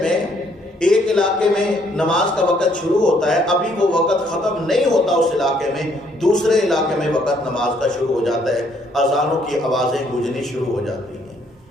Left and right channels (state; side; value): normal; both; correlation 0.67